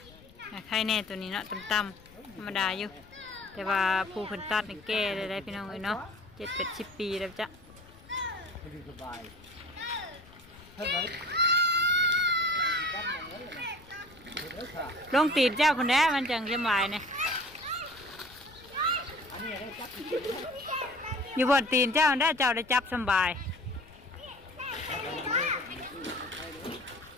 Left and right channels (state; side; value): noise; left; rumble, 23 dB below the sound